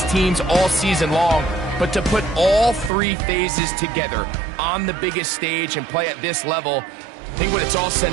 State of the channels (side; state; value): left; drops out; at 2.9 s